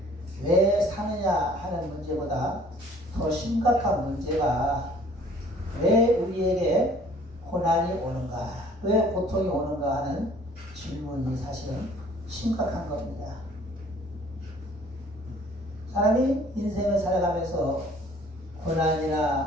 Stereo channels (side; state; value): both; normal; correlation 0.55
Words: 왜 사느냐 하는 문제보다 더 심각한 문제가 왜 우리에게 고난이 오는가, 왜 고통이 오는가 하는 질문이 사실은 심각한 겁니다. 사람이 인생을 살아가면서